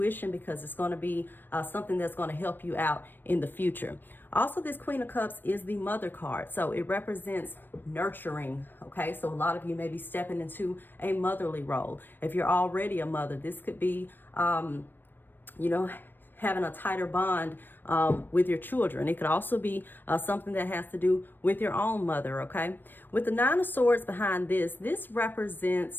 because it's going to be something that's going to help you out in the future. Also, this Queen of Cups is the Mother card. So it represents nurturing, okay? So a lot of you may be stepping into a motherly role. If you're already a mother, this could be, you know, having a tighter bond with your children. It could also be something that has to do with your own mother, okay? With the Nine of Swords behind this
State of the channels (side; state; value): right; late; 0.094 ms